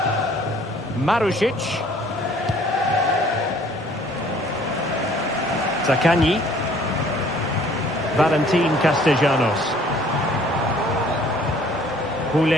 Marušić. Zaccagni. Valentin Castellanos.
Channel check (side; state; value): both; normal; correlation 0.56